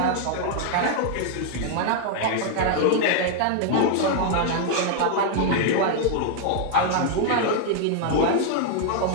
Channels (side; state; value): both; different; correlation -0.01